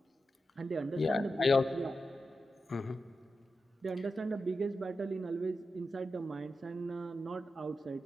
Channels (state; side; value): normal; both; correlation 0.89